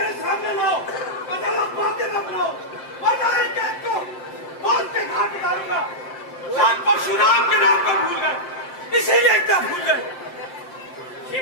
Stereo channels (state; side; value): late; right; 5.7 ms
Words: सामने लाओ, अदालत बातें न बनाओ, वरना एक एक को मौत के घाट उतारूंगा। राम परशुराम के नाम को भूल गए, इसीलिए इतना भूल गए।